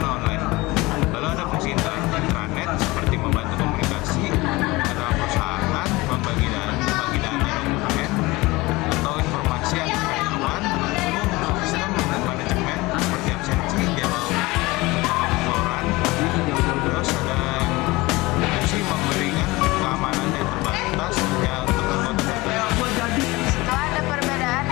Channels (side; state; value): right; quieter; 21.7 dB